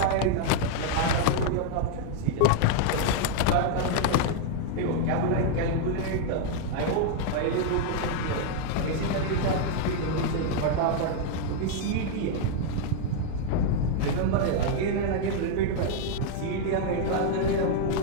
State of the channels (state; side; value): different; both; correlation 0.00